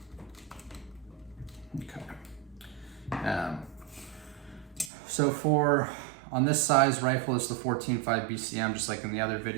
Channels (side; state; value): left; drops out; at 4.9 s